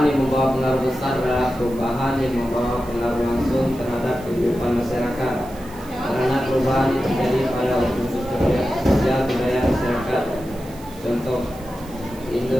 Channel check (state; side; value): noise; right; hiss, 22 dB below the sound